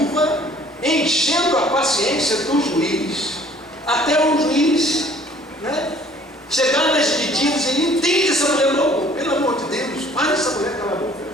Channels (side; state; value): both; normal; correlation 0.55